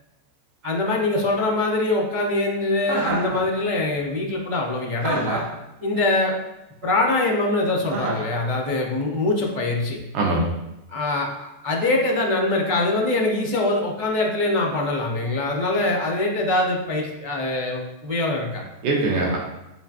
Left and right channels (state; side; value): late; left; 14 ms